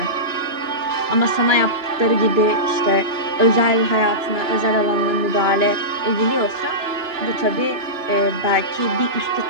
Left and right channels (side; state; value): left; late; 2.9 ms